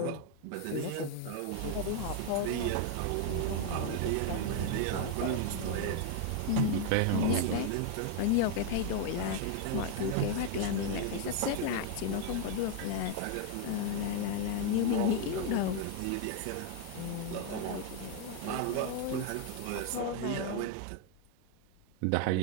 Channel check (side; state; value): both; different; correlation 0.00